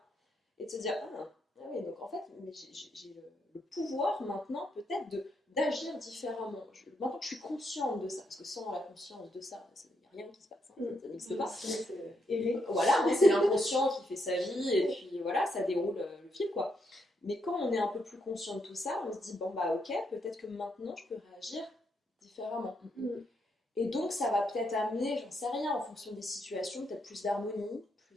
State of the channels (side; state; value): both; normal; correlation 0.78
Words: et de se dire, ah oui, donc en fait, mais j'ai le pouvoir maintenant peut-être d'agir différemment. Maintenant que je suis consciente de ça, parce que sans la conscience de ça, il n'y a rien qui se passe, ça n'existe pas. Voilà, c'est l'inconscient qui fait sa vie, et puis voilà, ça déroule le fil, quoi. Mais quand on est un peu plus conscient de tout ça, on se dit, bon bah ok, peut-être que maintenant je peux réagir différemment. Et donc ça va peut-être amener, j'en sais rien, en fonction des situations, peut-être plus d'harmonie,